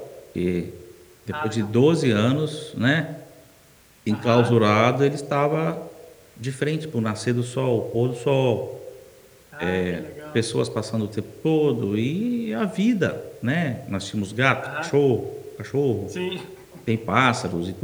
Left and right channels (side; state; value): both; identical; correlation 1.00